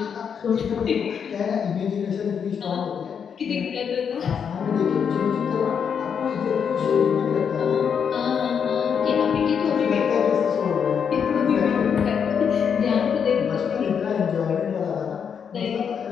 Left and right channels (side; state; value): right; quieter; 7.2 dB